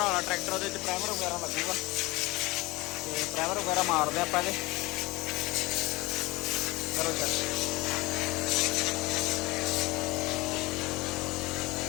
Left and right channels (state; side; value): quieter; right; 21.9 dB